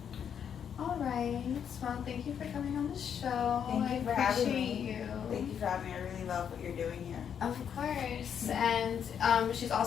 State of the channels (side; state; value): right; quieter; 8.1 dB